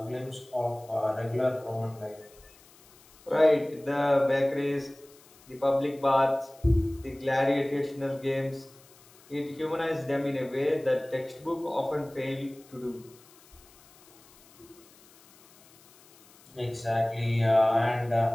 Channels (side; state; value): left; noise; hiss, 26 dB below the sound